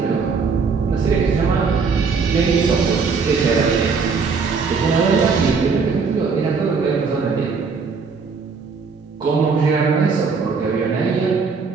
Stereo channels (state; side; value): quieter; left; 5.0 dB